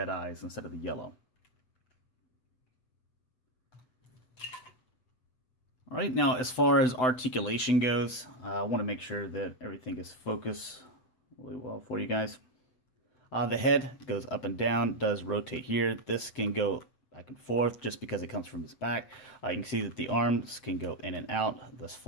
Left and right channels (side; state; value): right; late; 8.1 ms